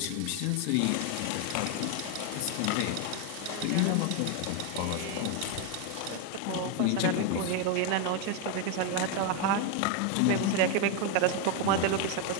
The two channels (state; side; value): different; both; correlation 0.01